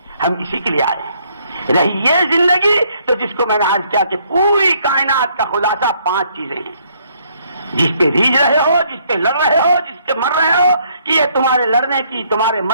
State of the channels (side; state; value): both; inverted; correlation -0.68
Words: ہم اسی کے لیے آئے ہیں. رہی یہ زندگی تو جس کو میں نے عرض کیا کہ پوری کائنات کا خلاصہ 5 چیزیں ہیں، جس پہ ریجھ رہے ہو، جس پہ لڑ رہے ہو، جس پہ مر رہے ہو، کہ یہ تمہارے لڑنے کی، تمہارے